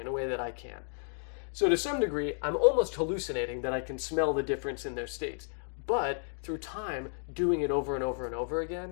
a way that I can't. So to some degree, I'm almost hallucinating that I can smell the difference in their states. But through time, doing it over and over and over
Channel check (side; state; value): right; silent; 56 dB below the other